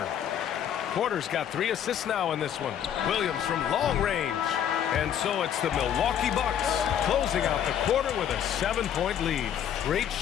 Porter's got 3 assists now in this one. Williams from long range. And so it's the Milwaukee Bucks closing out the quarter with a 7-point lead. Great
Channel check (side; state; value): right; quieter; 9.4 dB